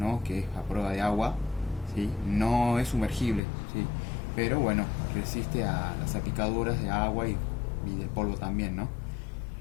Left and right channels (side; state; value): right; drops out; at 3.4 s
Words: Que es a prueba de agua, ¿sí? No es sumergible, ¿sí? Pero bueno, resiste a las salpicaduras de agua y del polvo también, ¿no?